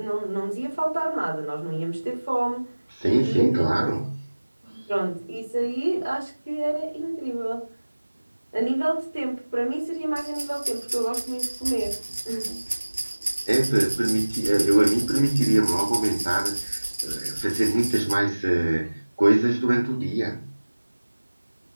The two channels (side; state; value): both; inverted; correlation -1.00